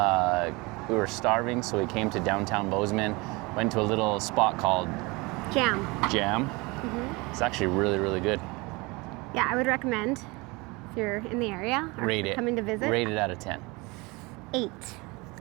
We were starving, so we came to downtown Bozeman, went to a little spot called Jam. Mm-hmm. It's actually really, really good. Yeah, I would recommend if you're in the area or coming to visit. Rate it out of 10. 8.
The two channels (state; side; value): quieter; left; 25.3 dB